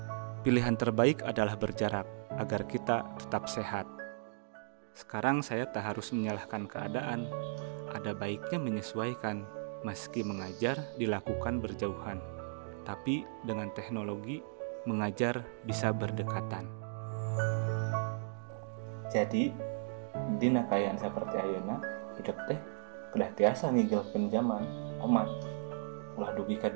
Pilihan terbaik adalah berjarak agar kita tetap sehat. Sekarang saya tak harus menyalahkan keadaan. Ada baiknya menyesuaikan, meski mengajar dilakukan berjauhan. Tapi dengan teknologi, mengajar bisa berdekatan. Jadi, dina kayaan seperti ayeuna, hidup teh kedah tiasa ngigel zaman, omat. Ulah dugi ka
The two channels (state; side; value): silent; left; digital silence